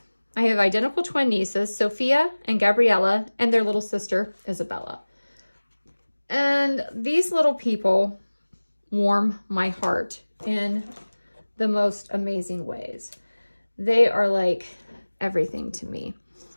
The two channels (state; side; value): inverted; both; correlation -1.00